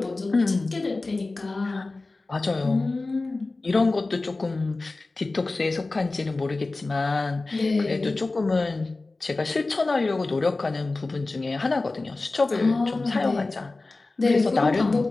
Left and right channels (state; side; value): quieter; right; 3.3 dB